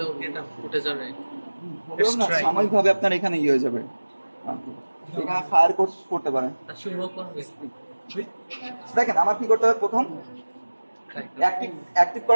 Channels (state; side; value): inverted; both; correlation -1.00